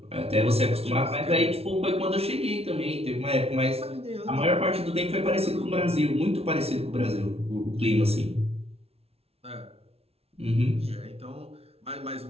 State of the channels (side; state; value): left; late; 0.30 ms